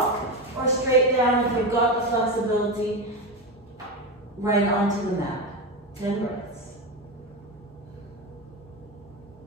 or straight down if you've got the flexibility right onto the mat. 10 breaths.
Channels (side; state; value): both; normal; correlation 0.16